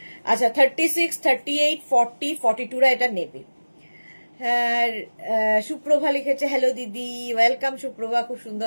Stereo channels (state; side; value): inverted; both; correlation -1.00